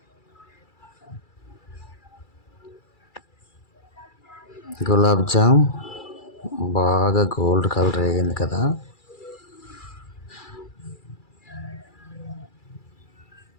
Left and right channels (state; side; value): late; right; 2.3 ms